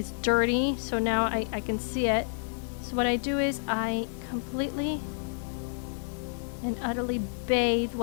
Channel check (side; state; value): right; silent; digital silence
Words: dirty, so now I can see it. So what I do is I completely and utterly bathe